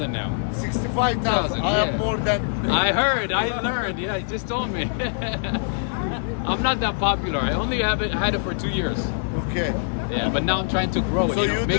now. 65,000. I yeah. have more than. I heard, I learned. Yeah, he just told me. I'm not that popular. I only had it for 2 years. Okay. Yeah, but now I'm trying to grow it, So you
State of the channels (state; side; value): silent; right; 56 dB below the other